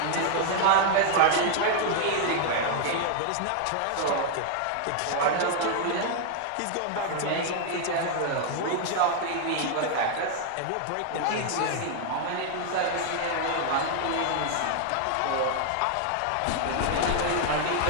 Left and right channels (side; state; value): both; different; correlation 0.00